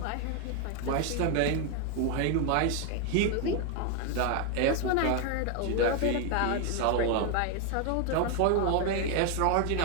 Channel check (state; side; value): different; both; correlation 0.01